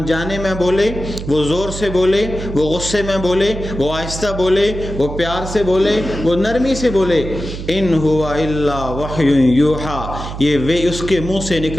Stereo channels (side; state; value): right; noise; hum, 8 dB below the sound